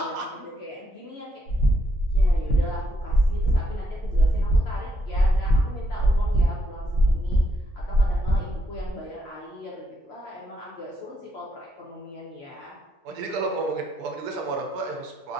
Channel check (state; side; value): normal; both; correlation 0.77